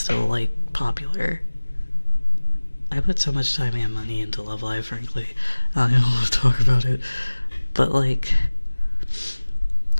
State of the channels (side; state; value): both; inverted; correlation -1.00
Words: like popular. I put so much time and money into Love Live, frankly. I don't want to talk about it. But like,